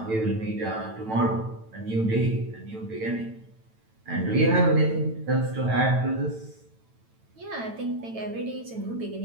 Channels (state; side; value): late; left; 9.0 ms